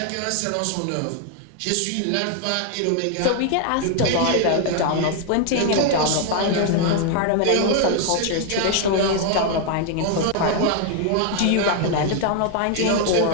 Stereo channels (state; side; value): different; both; correlation 0.00